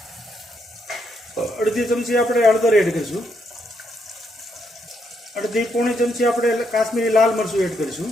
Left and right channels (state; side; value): normal; both; correlation 0.77